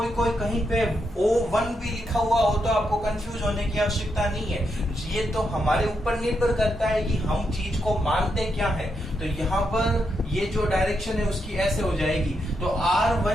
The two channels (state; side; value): normal; both; correlation 0.82